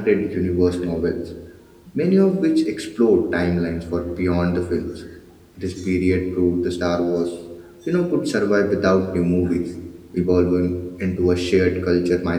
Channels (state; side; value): identical; both; correlation 1.00